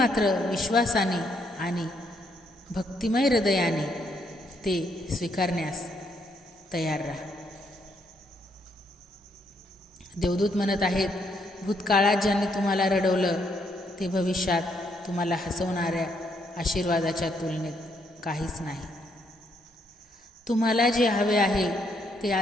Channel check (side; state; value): both; normal; correlation 0.73